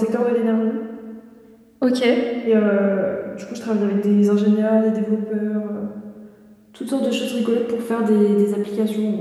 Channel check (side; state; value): both; identical; correlation 1.00